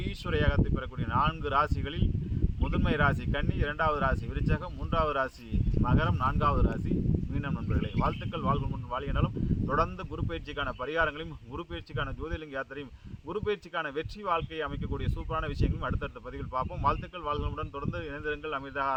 யோகத்தை பெறக்கூடிய 4 ராசிகளில் முதன்மை ராசி கன்னி, 2வது ராசி விருச்சகம், 3வது ராசி மகரம், 4வது ராசி மீனம் நண்பர்களே. வாழ்த்துக்கள், வாழ்வு வாழ்கினாலும் தொடர்ந்து குரு பயிற்சிக்கான பரிகாரங்களையும் குரு பயிற்சிக்கான ஜோதிலிங்க யாத்திரையும் குரு பயிற்சிக்கான வெற்றி வாழ்க்கையை அமைக்கக்கூடிய சூப்பரான விஷயங்களும் அடுத்தடுத்த பதிவில் பார்ப்போம். வாழ்த்துக்கள், வாழ்வுடன் தொடர்ந்து இணைந்திருங்கள்.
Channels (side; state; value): both; identical; correlation 1.00